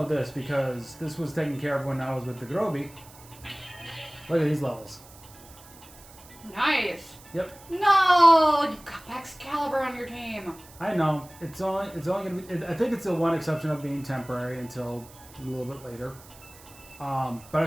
this because this was taken care of when I was with the Groby. Look at these levels. Nice. Yep. No, you've got Excalibur on your team. I know. It's only gonna be. I think it's the one exception of being temporary until a little bit later. But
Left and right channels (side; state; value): right; noise; hiss, 22 dB below the sound